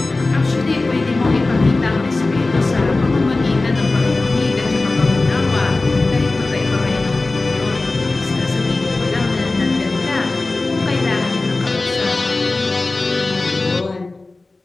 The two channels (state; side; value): quieter; right; 3.2 dB